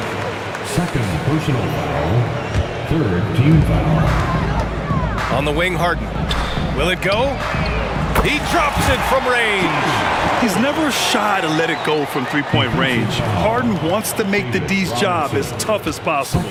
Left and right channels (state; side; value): identical; both; correlation 1.00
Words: Second personal foul. Third team foul. On the wing, Harden. Will it go? He drops it from range. He's never shy to let it go from three-point range. Harden wants to make the D's job as tough as possible.